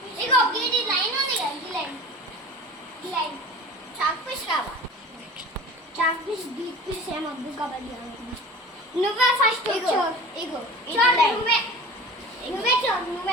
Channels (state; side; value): normal; both; correlation 0.38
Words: ఇగో గీడి లైన్ ఉంది కదా, ఈ లైన్ చాక్ పీస్ కావాలి. చాక్ పీస్ బీట్ పీస్ ఏమొద్దు. కబడ్డీ నువ్వే ఫస్ట్ ఇగో